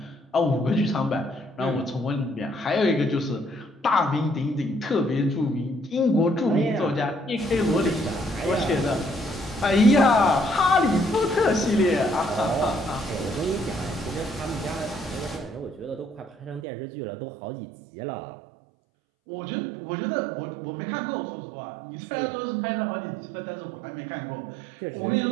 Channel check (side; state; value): left; drops out; at 16.7 s